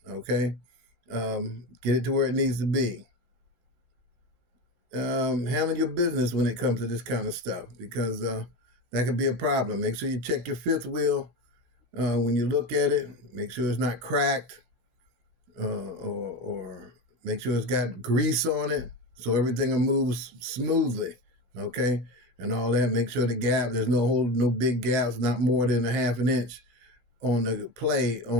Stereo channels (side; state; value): left; late; 16 ms